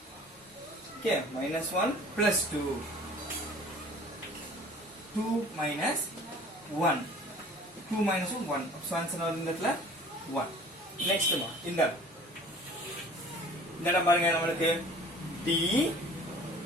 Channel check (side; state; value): both; normal; correlation 0.48